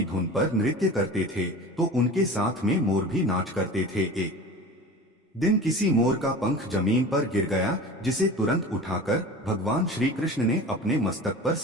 धुन पर नृत्य करते थे तो उनके साथ में मोर भी नाच करते थे। एक दिन किसी मोर का पंख जमीन पर गिर गया, जिसे तुरंत उठाकर भगवान श्री कृष्ण ने अपने मस्तक पर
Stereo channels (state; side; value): normal; both; correlation 0.36